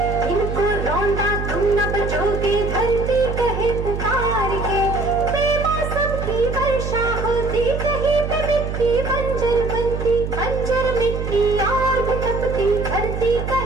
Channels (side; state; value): right; noise; hum, 4 dB below the sound